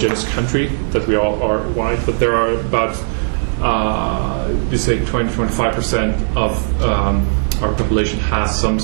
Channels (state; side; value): silent; left; digital silence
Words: country, that we all are white, but there are about, you say 20-25% of our population has some